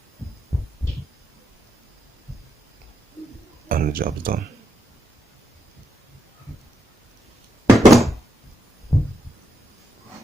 And the job's done.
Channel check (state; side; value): normal; both; correlation 0.81